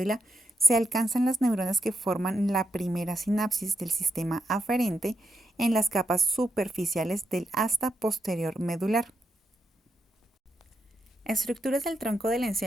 se alcanzan las neuronas que forman la primera sinapsis del sistema aferente en las capas superficiales del asta posterior medular. Estructuras del tronco del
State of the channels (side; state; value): both; normal; correlation 0.82